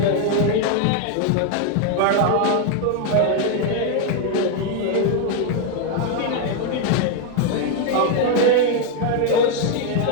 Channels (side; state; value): both; different; correlation 0.01